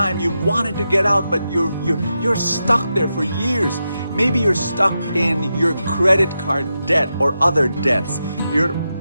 you wanted to get out but you're stuck there for years? Maybe you're stuck in your credit card debt or other debts. You're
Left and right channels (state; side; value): inverted; both; correlation -0.88